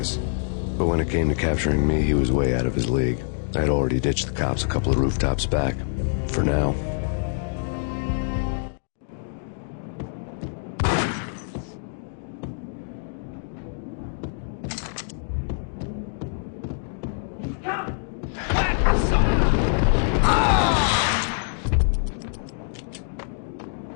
But when it came to capturing me, he was way out of his league. I had already ditched the cops a couple of rooftops back. For now.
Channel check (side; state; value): right; silent; digital silence